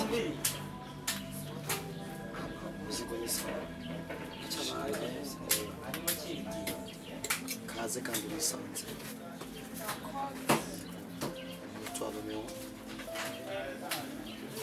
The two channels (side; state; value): both; identical; correlation 1.00